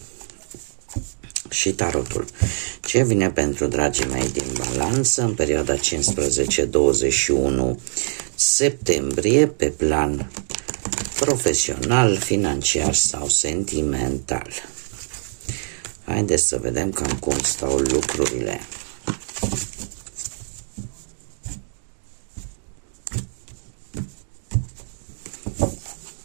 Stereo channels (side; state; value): left; silent; digital silence